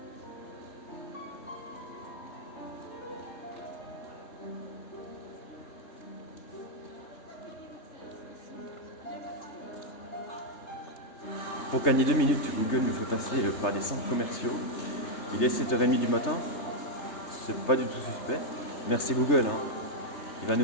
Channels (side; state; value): right; late; 3.3 ms